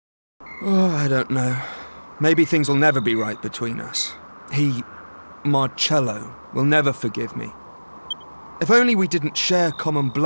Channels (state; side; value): inverted; both; correlation -1.00